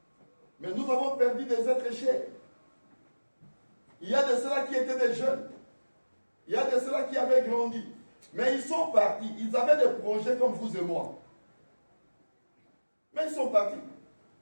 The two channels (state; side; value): inverted; both; correlation -1.00